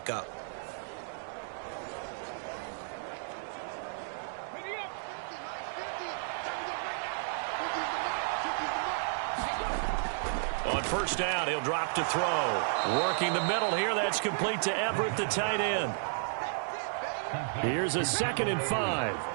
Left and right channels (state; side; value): silent; left; digital silence